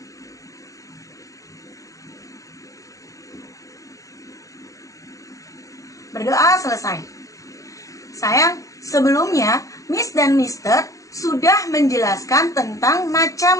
Berdoa selesai. Sayang, sebelumnya Miss dan Mister sudah menjelaskan tentang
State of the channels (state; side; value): late; right; 0.16 ms